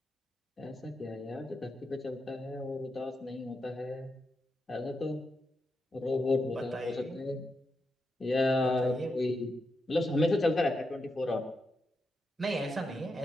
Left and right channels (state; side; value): normal; both; correlation 0.85